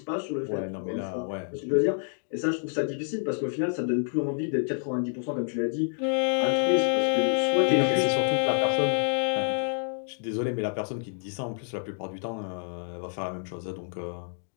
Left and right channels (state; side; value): silent; right; digital silence